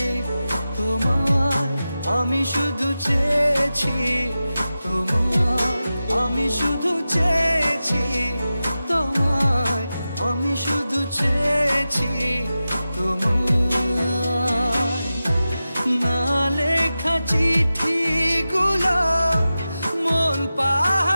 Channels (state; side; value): inverted; both; correlation -0.93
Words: তোমায়, আমি শুধু চেয়েছি তোমায়, আমি শুধু চেয়েছি তোমায়, আমি শুধু চেয়েছি তোমায়। না লেখা চিঠিগুলো মন